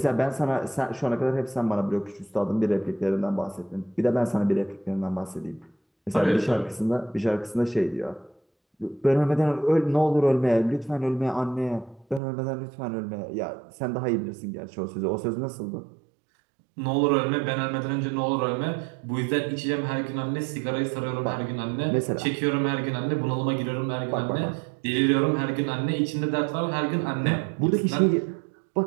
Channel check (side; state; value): left; drops out; at 12.2 s